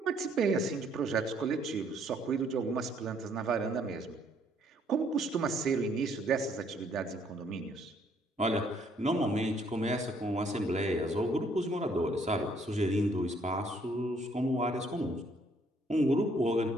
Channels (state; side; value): normal; both; correlation 0.66